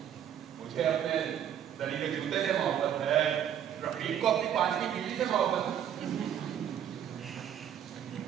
मुझे अपने दरी के जूते से मोहब्बत है, रफीक को अपनी 5वीं बीवी से मोहब्बत है।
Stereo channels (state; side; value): quieter; left; 9.7 dB